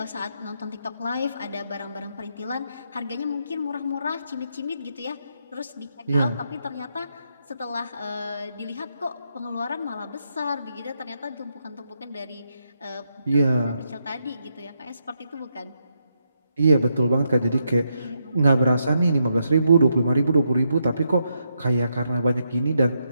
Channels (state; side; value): inverted; both; correlation -0.81